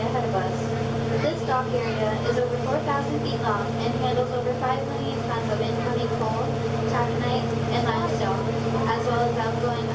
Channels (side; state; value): both; identical; correlation 1.00